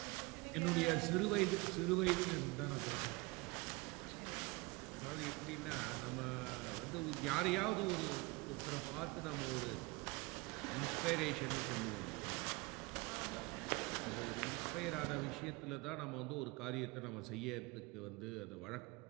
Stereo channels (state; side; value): quieter; left; 24.5 dB